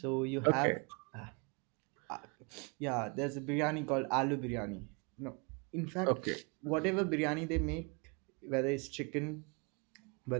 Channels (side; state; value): left; quieter; 32.2 dB